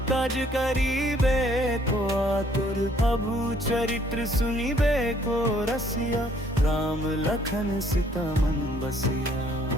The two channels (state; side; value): normal; both; correlation 0.63